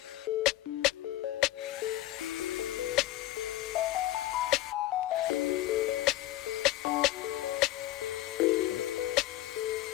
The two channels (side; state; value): right; quieter; 15.7 dB